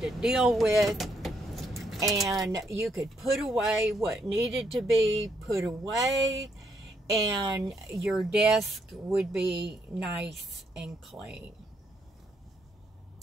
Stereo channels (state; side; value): normal; both; correlation 0.75